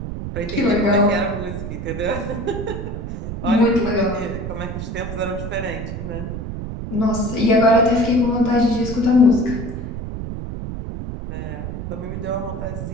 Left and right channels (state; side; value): noise; right; rumble, 6 dB below the sound